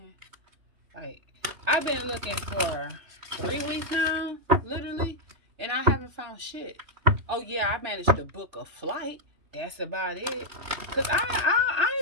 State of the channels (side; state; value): left; late; 3.1 ms